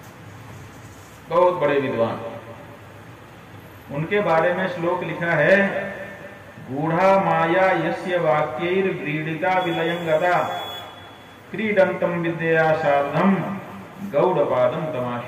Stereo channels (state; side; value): identical; both; correlation 1.00